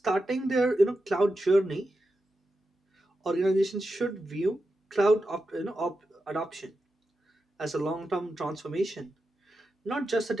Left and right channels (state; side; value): normal; both; correlation 0.89